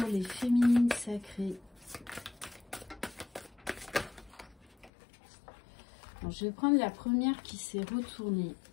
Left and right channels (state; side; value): drops out; right; at 4.9 s